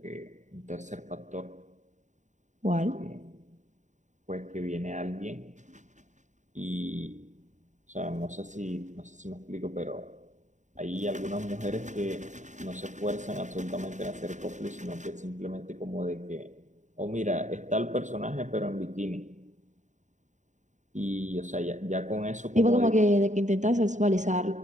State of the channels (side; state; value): left; late; 0.35 ms